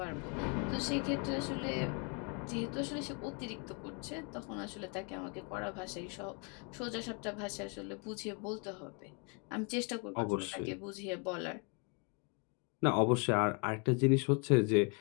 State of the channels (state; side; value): quieter; right; 35.4 dB